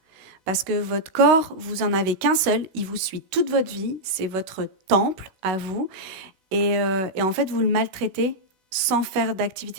Parce que votre corps, vous en avez qu'un seul, il vous suit toute votre vie, c'est votre temple à vous, et en fait, vous le maltraitez sans faire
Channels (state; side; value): late; left; 16 ms